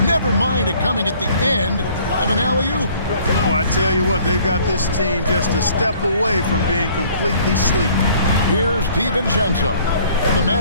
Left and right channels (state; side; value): inverted; both; correlation -0.56